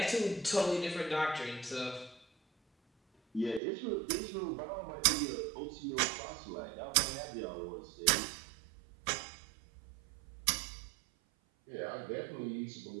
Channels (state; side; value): drops out; left; at 3.6 s